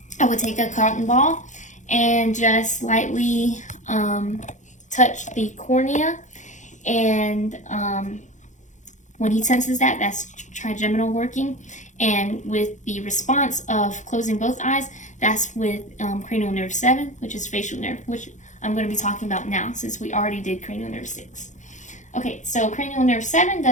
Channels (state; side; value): late; right; 0.35 ms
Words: I would take a cotton ball and just lightly touch the cornea, and when he senses that, that's trigeminal working. And with the response of closing both eyes, that's with cranial nerve 7, which is facial nerve, which I'm going to be talking about now since we already did cranial nerve 6. Okay, so cranial nerve 7